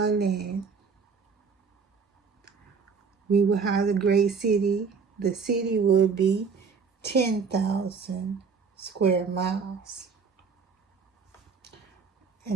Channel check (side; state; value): left; quieter; 5.4 dB